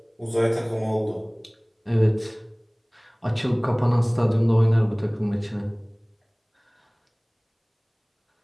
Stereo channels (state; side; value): identical; both; correlation 1.00